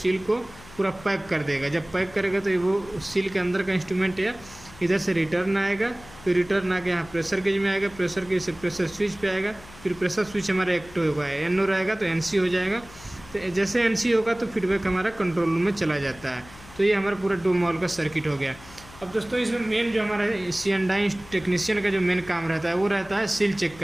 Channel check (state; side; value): noise; left; hum, 20 dB below the sound